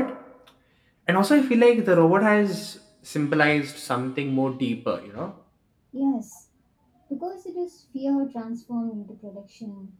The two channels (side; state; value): both; identical; correlation 1.00